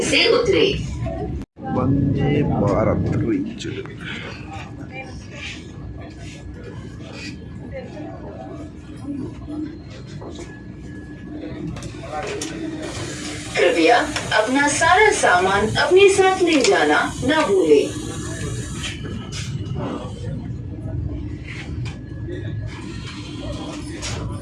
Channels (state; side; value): identical; both; correlation 1.00